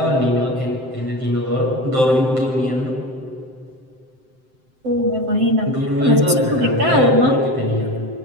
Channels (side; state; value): left; late; 7.7 ms